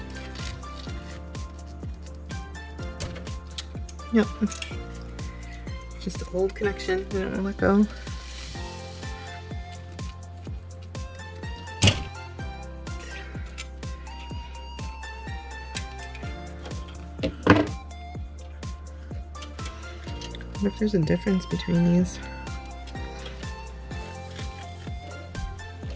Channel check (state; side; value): identical; both; correlation 1.00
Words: Yep. Just an old connection. I don't want to let go. I wonder if there's a difference between these.